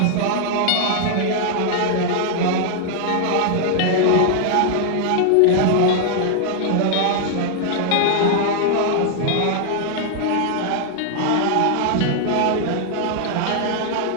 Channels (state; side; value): different; both; correlation -0.01